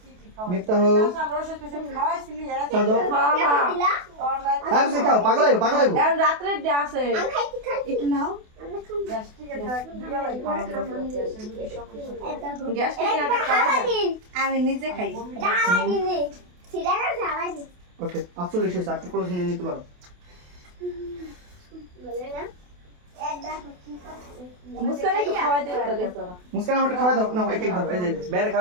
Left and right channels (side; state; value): left; late; 28 ms